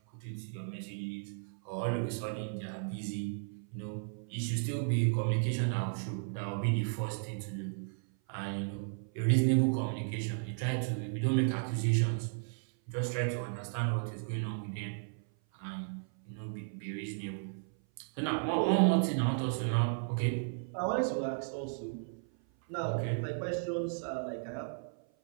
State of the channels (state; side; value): silent; left; 55 dB below the other